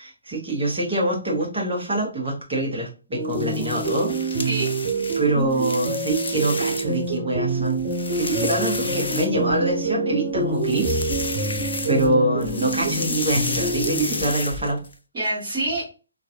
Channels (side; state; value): both; inverted; correlation -0.45